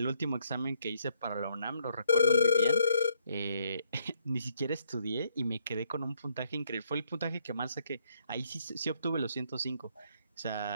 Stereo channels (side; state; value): both; inverted; correlation -0.71